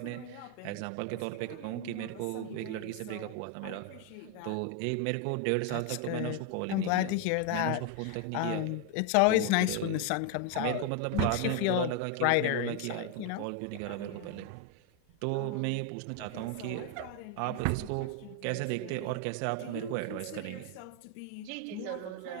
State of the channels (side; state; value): both; different; correlation 0.01